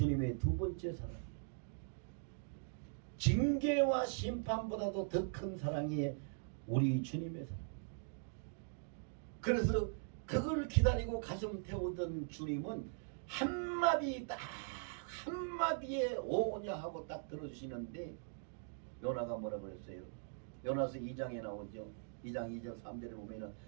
두 번째 사랑이에요. 징계와 심판보다도 더 큰 사랑이 우리 주님의 사랑. 그래서 그걸 기다리고 가슴 태우던 주님은 한마디에 오냐 하고 딱 들어주시는데, 요나가 뭐라 그랬어요? 요나서 2장에 나오죠. 2장 2절 3절에 보면은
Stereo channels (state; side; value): silent; left; digital silence